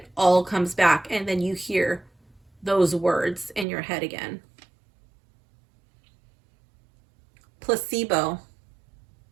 all comes back, and then you hear those words in your head again. Placebo.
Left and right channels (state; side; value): drops out; left; at 3.7 s